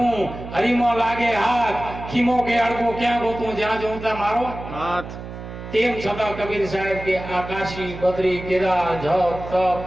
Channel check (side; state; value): right; noise; hum, 11 dB below the sound